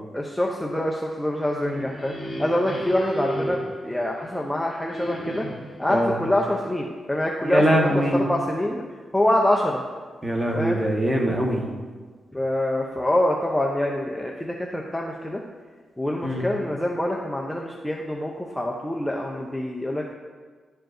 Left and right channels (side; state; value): both; normal; correlation 0.91